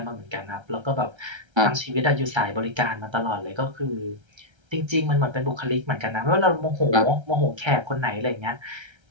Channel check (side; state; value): left; late; 1.3 ms